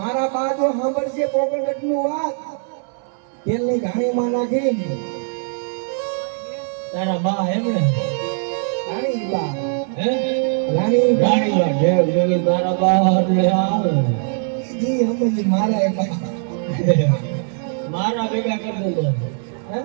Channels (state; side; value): silent; left; 62 dB below the other